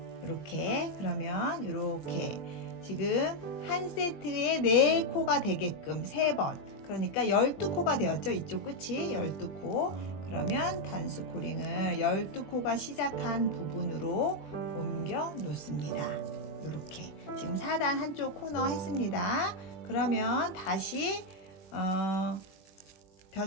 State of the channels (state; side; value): late; right; 21 ms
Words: 이렇게, 그러면 이렇게 지금 한 세트에 4코가 되게끔 3번, 그러니까 12코가 되었죠. 이쪽 끝이 12코. 그러면 단수코링을 12코가 시작한 부분으로 옮겨 놓습니다. 이렇게 지금 4단 한쪽 코너 했습니다. 그러면 다시